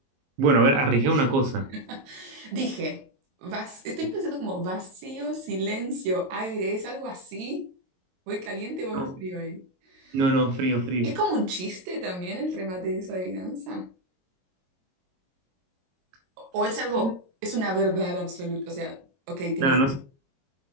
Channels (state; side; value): late; left; 22 ms